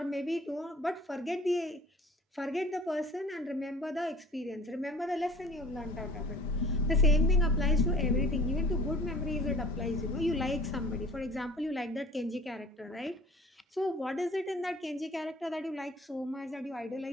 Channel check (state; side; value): normal; both; correlation 0.48